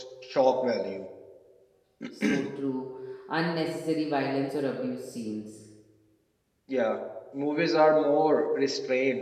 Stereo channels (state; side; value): identical; both; correlation 1.00